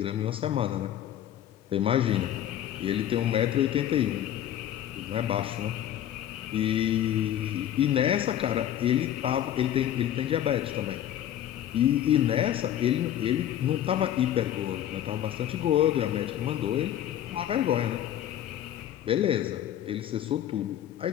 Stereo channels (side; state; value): right; quieter; 11.3 dB